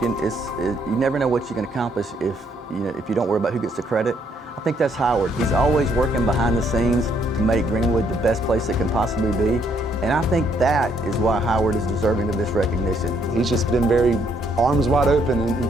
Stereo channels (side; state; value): both; normal; correlation 0.70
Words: never know what you can accomplish if you don't worry about who gets the credit. I think that's Howard. He's always working behind the scenes to make Greenwood the best place it can possibly be. And I think that is why Howard is deserving of this recognition. He's just been very arms wide open in